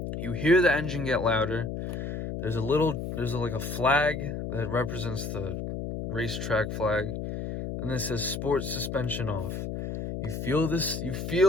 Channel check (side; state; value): left; noise; hum, 5 dB below the sound